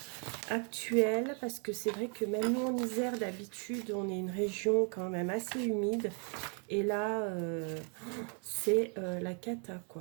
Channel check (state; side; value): quieter; left; 38.8 dB